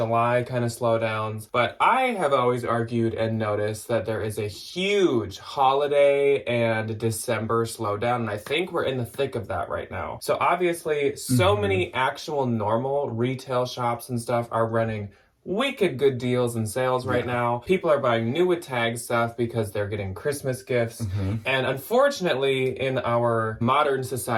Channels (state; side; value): identical; both; correlation 1.00